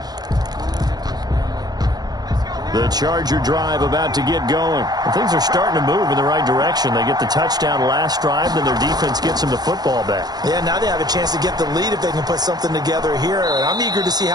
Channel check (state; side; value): late; left; 0.19 ms